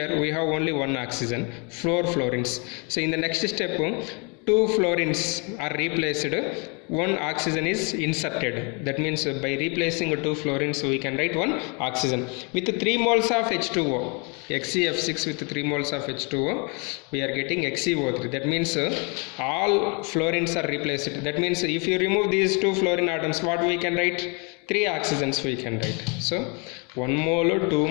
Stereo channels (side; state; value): right; quieter; 33.2 dB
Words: we have only 1 oxygen, 4 fluorines. So in the next step, 2 fluorines are replaced, 1 oxygen is inserted. That means by replacing 2 fluorines, we can write 1 oxygen. With 3 moles of H2O, XeF6 with 3 moles of H2O, we are getting XeO3. That means all fluorines are replaced. That means if you remove these 2 fluorine atoms, what we can write? 3 oxygens we can write. So 1 mole, 2